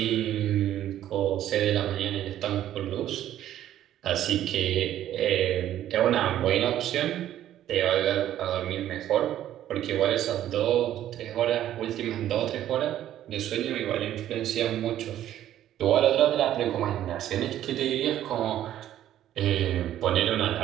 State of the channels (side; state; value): left; quieter; 12.1 dB